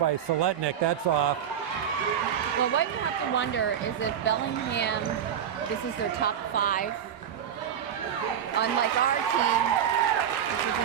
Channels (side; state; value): left; quieter; 9.0 dB